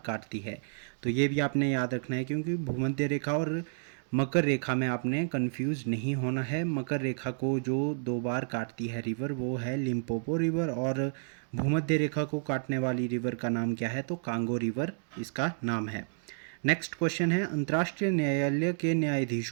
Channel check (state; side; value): silent; left; digital silence